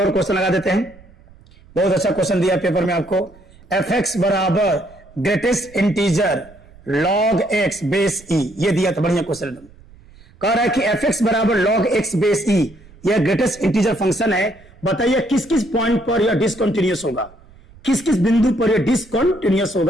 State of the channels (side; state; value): right; noise; rumble, 25 dB below the sound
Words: क्वेश्चन लगा देते हैं, बहुत अच्छा क्वेश्चन दिया पेपर में आपको। fx बराबर greatest integer log x base e, ये दिया था, बढ़िया क्वेश्चन कह रहा है कि fx बराबर log x बेस e, यह ग्रेटेस्ट इंटीजर फंक्शन है। बताइए किस किस पॉइंट पर यह डिसकंटिन्यूअस होगा, किस किस बिंदु पर यह डिसकंटिन्यूअस